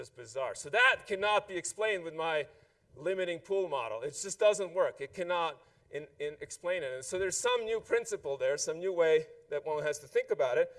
bizarre. So that cannot be explained with my limiting pool model. It just doesn't work. It cannot explain it. And so there's some new principle there, some new way that one has to think about it.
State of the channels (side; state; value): both; identical; correlation 1.00